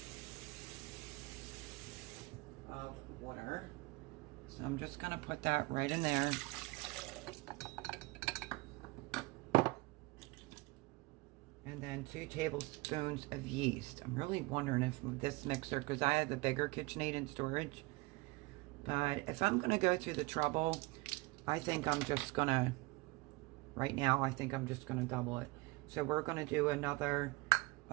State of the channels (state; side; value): quieter; left; 23.8 dB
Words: of water. So I'm just going to put that right in there. And then 2 tablespoons of yeast. I'm really wondering if this mixer, because I have a bigger KitchenAid in storage. But if I'm going to go through the trouble, I think I'm just going to, right now, I think I'm just going to double it. So we're going to do another